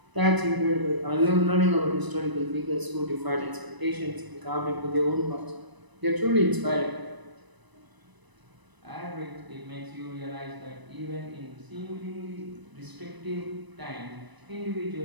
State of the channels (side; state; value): left; late; 1.0 ms